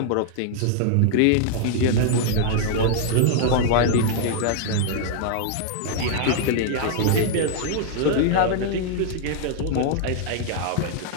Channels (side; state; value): both; different; correlation 0.00